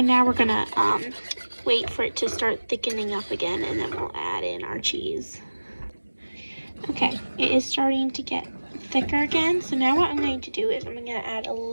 now we're gonna wait for it to start thickening up again, and then we'll add in our cheese. Okay, it is starting to get thicker again, so now what I'm going to do is I'm gonna add a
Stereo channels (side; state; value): both; inverted; correlation -1.00